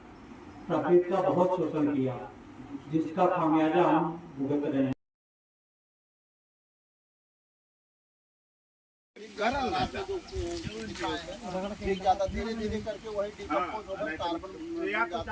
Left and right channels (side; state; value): both; identical; correlation 1.00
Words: प्रकृति का बहुत शोषण किया, जिसका खामियाजा हम भुगत रहे हैं। धीरे धीरे करके वही डिकम्पोज होकर कार्बन